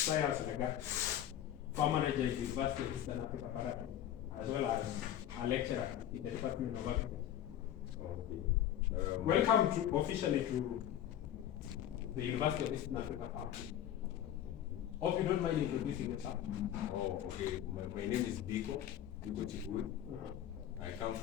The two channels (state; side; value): quieter; right; 11.3 dB